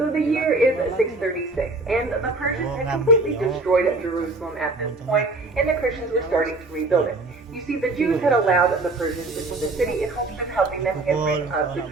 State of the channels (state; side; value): quieter; left; 3.1 dB